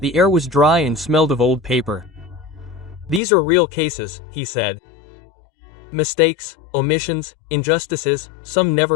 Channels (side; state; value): right; drops out; at 3.2 s